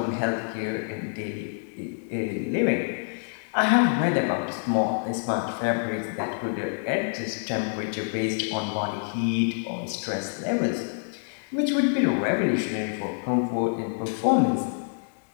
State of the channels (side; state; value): right; silent; digital silence